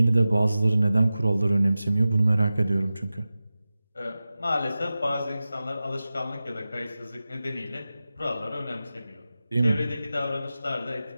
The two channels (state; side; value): inverted; both; correlation -0.95